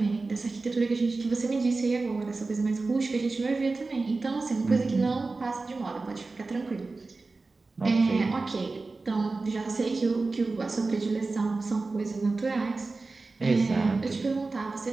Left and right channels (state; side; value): quieter; left; 3.7 dB